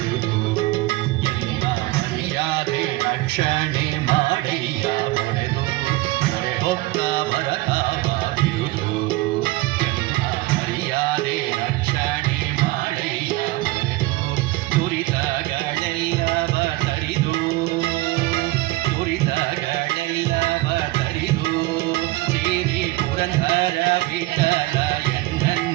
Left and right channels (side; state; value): left; quieter; 19.4 dB